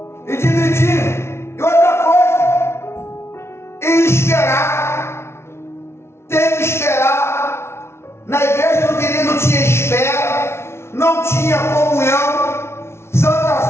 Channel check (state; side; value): late; right; 0.12 ms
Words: e dividir. E outra coisa, e esperar. Tem que esperar. Na igreja do querido não tinha espera, não tinha comunhão. Santa